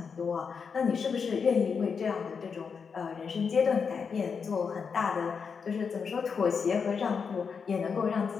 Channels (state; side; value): quieter; right; 5.9 dB